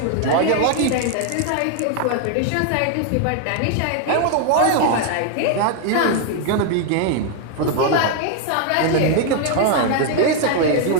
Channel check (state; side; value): different; both; correlation 0.00